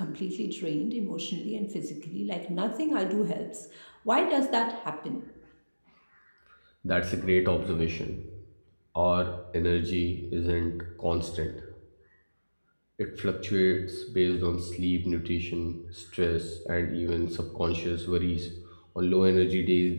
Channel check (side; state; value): both; inverted; correlation -1.00